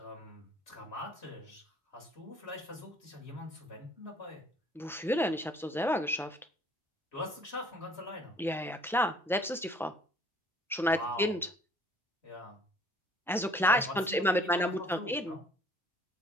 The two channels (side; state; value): both; normal; correlation 0.57